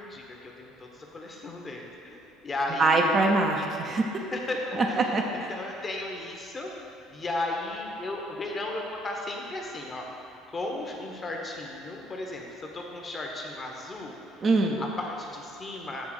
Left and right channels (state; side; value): normal; both; correlation 0.69